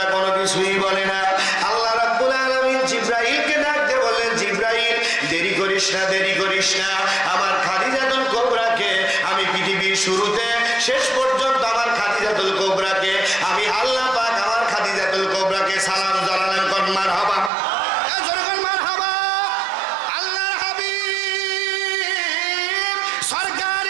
কোনো কিছুই বলে না। আল্লাহ রাব্বুল আলামিন জিবরাইলকে ডাক দিয়ে বললেন, জিবরাইল দেরি করিস না, দেরি করিস না। আমার খাদিজাতুল কুবরাকে আমি পৃথিবীর শুরুতে শেষ পর্যন্ত আমার খাদিজাতুল কুবরাকে আমি আল্লাহ পাক আমার খাদিজাতুল কুবরাকে সালাম জানালেন। কোন মারহাবা?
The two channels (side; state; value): left; drops out; at 17.5 s